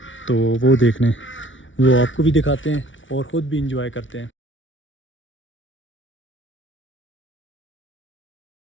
तो वो देखने, वो आपको भी दिखाते हैं और ख़ुद भी इंजॉय करते हैं।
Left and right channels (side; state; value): right; late; 0.56 ms